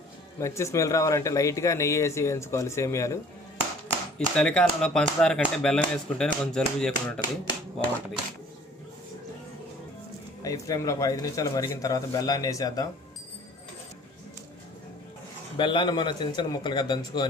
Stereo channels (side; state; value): both; normal; correlation 0.51